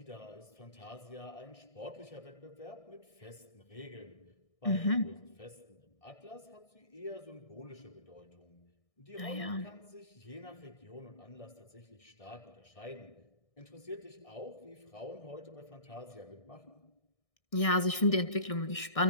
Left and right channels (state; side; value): late; right; 1.6 ms